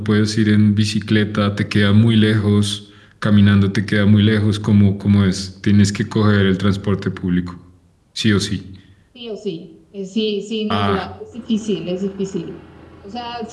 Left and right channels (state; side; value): identical; both; correlation 1.00